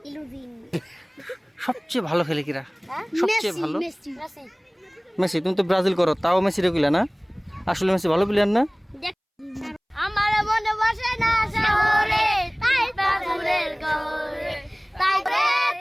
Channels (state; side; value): identical; both; correlation 1.00